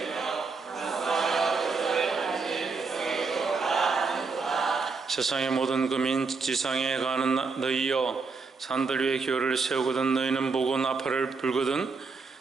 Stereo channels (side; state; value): left; quieter; 4.5 dB